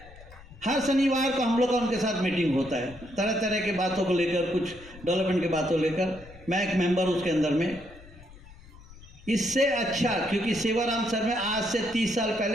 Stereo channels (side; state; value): left; noise; rumble, 20 dB below the sound